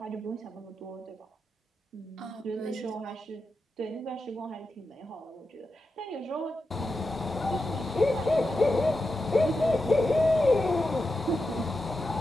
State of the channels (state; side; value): normal; both; correlation 0.89